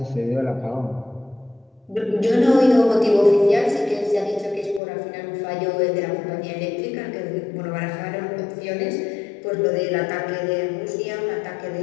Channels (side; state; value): right; drops out; at 4.8 s